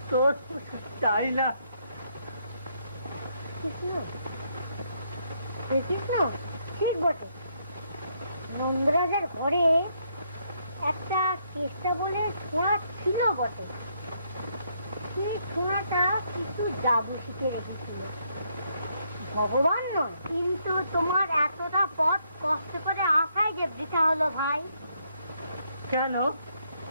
তোর চাই না। কৃষ্ণ, কৃষ্ণ, ঠিক বটে। নন্দরাজার ঘরে একটা চেষ্টা বলে ছোঁয়া ছিল বটে। সেই ছোঁয়াটা কিছু জাদু শিখে রেখেছিল। ভগবান নয়, কিন্তু তোমার এতটা পথ কষ্ট করে আসাই যে বৃথা হলো ভাই। কেন?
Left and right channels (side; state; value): both; inverted; correlation -0.74